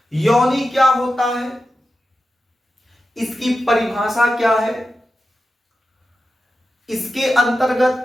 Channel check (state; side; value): normal; both; correlation 0.91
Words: योनि क्या होता है, इसकी परिभाषा क्या है, इसके